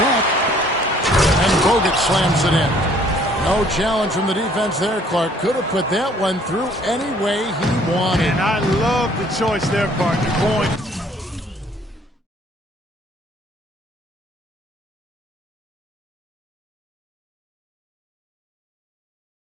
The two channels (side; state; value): both; normal; correlation 0.59